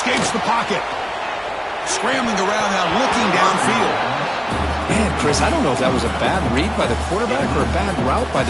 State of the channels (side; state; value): both; identical; correlation 1.00